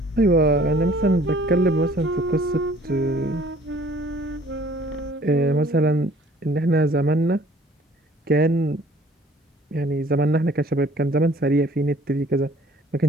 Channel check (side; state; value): both; normal; correlation 0.55